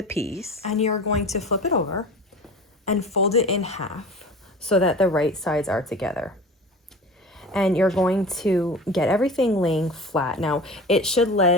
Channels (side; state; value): both; normal; correlation 0.36